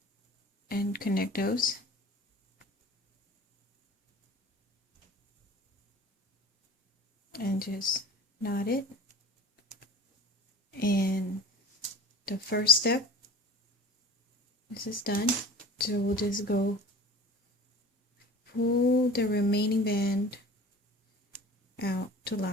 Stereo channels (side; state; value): both; normal; correlation 0.39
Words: and connect those. And just knot it. And the first step, this is done. So we'll just go pull the remaining band out to